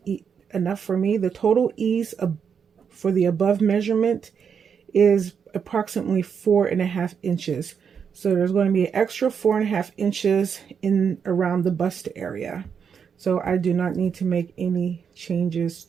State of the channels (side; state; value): left; quieter; 6.9 dB